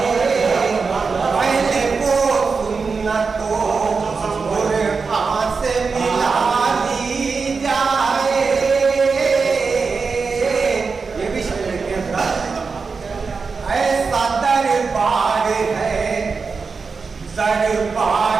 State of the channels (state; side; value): quieter; left; 4.8 dB